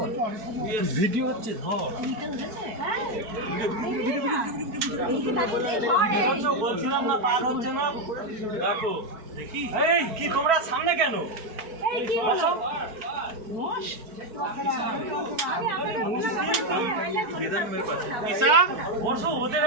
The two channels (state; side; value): late; left; 4.6 ms